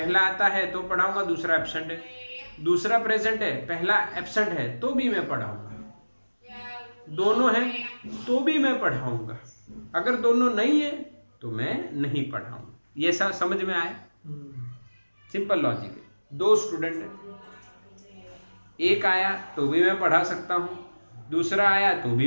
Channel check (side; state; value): both; inverted; correlation -1.00